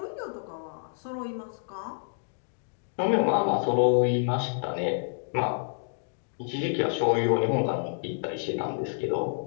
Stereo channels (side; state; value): right; silent; digital silence